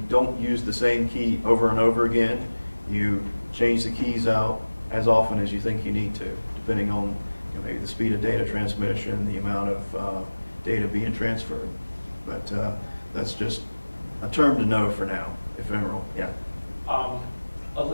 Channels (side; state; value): both; inverted; correlation -1.00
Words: don't use the same key over and over again. You change the keys out as often as you think you need to, depending on maybe the speed of data transmission, the amount of data being transferred. But that's just a term to know for now, ephemeral, yeah.